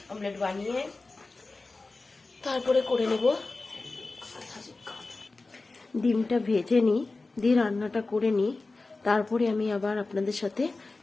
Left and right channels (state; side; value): quieter; right; 3.5 dB